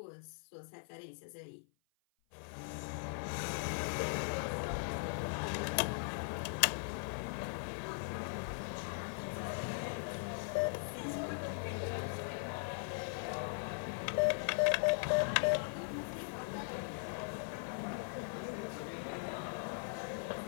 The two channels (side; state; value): right; silent; 51 dB below the other